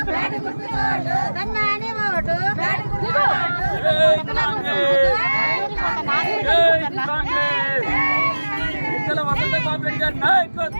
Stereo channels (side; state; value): both; inverted; correlation -1.00